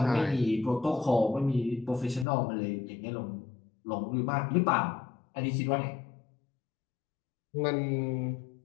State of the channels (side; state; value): right; drops out; at 2.2 s